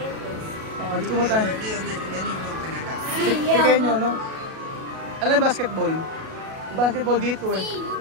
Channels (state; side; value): late; left; 37 ms